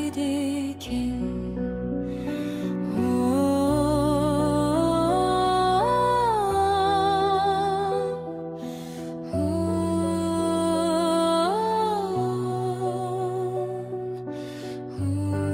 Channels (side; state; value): both; identical; correlation 1.00